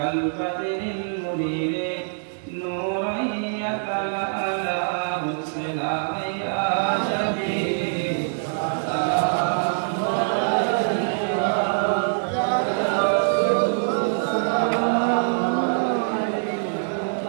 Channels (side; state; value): left; silent; digital silence